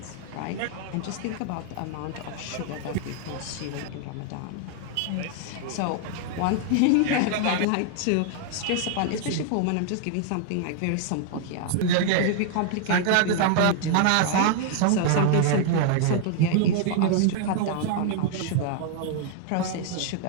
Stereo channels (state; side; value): different; both; correlation -0.01